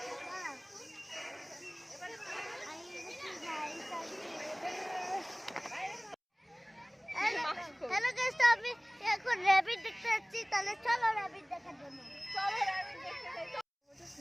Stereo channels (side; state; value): both; identical; correlation 1.00